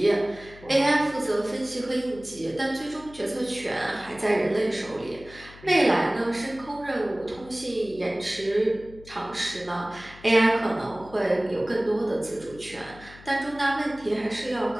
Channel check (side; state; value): left; noise; hum, 20 dB below the sound